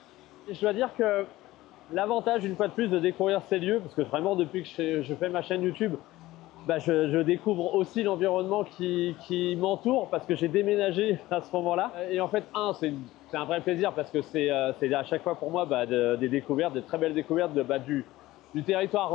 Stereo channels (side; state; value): right; quieter; 17.2 dB